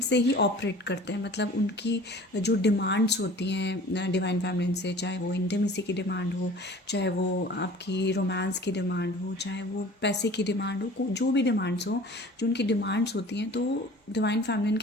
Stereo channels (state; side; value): normal; both; correlation 0.45